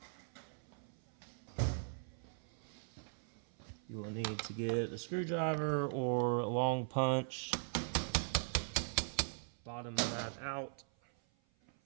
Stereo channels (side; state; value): left; silent; 51 dB below the other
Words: You will need to get a screwdriver or a long punch. Bottom that out.